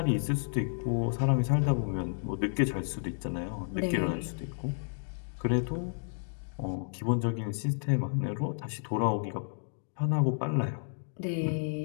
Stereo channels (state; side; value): silent; right; digital silence